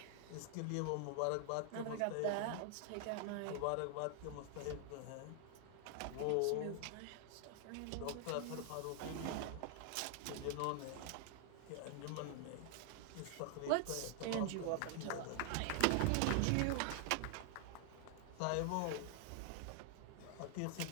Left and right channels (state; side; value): different; both; correlation 0.00